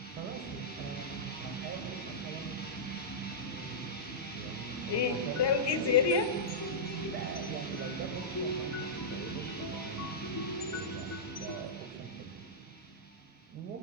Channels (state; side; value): normal; both; correlation -0.12